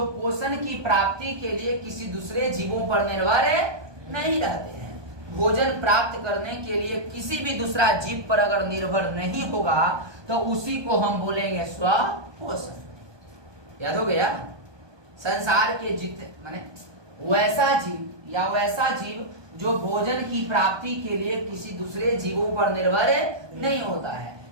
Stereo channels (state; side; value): late; left; 1.2 ms